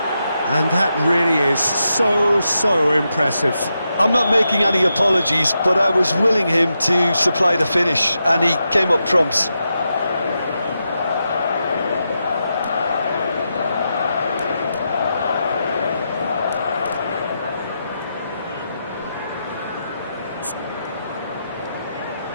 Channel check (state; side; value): inverted; both; correlation -0.86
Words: And that really is so impressive. I'm not making any apologies, but I was willing him to supply the finish, and he came up trumps.